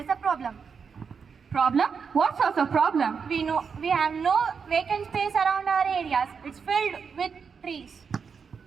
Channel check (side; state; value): left; quieter; 6.0 dB